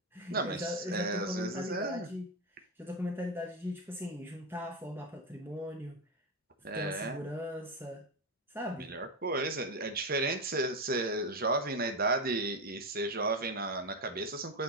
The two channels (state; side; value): normal; both; correlation 0.12